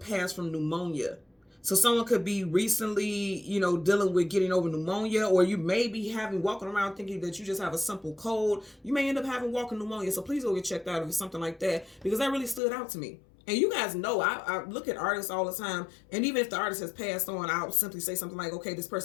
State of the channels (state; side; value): drops out; right; at 12.6 s